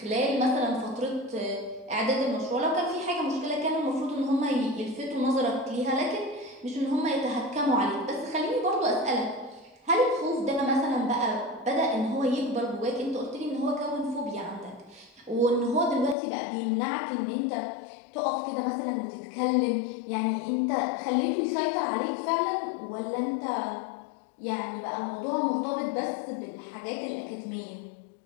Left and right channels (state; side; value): drops out; right; at 16.2 s